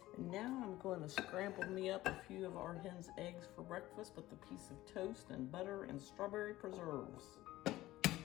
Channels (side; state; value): right; quieter; 16.4 dB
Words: And now I'm going to scramble me up a few of our hen's eggs for breakfast with a piece of toast and butter and strawberry preserves.